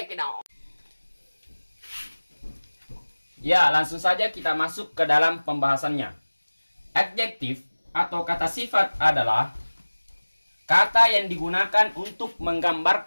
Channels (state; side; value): inverted; both; correlation -1.00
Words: it out! Ya, langsung saja kita masuk ke dalam pembahasannya. Adjektif atau kata sifat adalah kata yang digunakan untuk